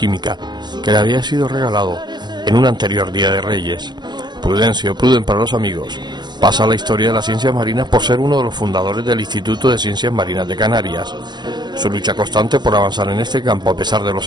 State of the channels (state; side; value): late; left; 0.21 ms